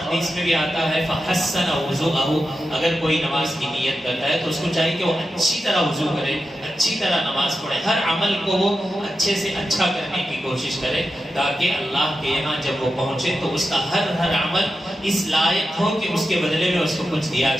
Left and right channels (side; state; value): both; normal; correlation 0.90